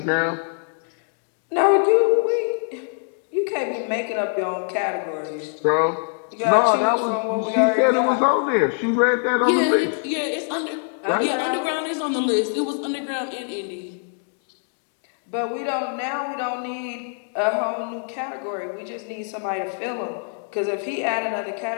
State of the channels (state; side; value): silent; right; 55 dB below the other